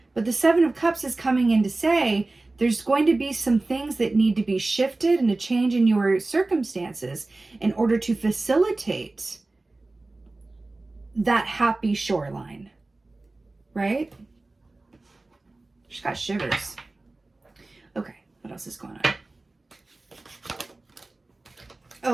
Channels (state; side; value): quieter; left; 3.1 dB